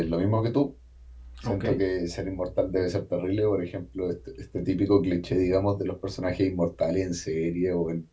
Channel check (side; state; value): both; identical; correlation 1.00